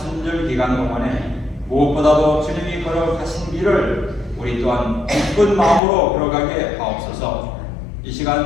기간 동안에 무엇보다도 주님이 걸어가신 길을 우리 또한 기쁜 마음으로 걸어가게 하옵소서. 이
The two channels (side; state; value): right; drops out; at 5.8 s